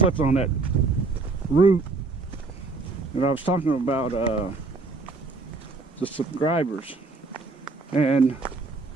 on that root. And I was talking about the subscribers. And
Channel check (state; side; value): quieter; left; 3.8 dB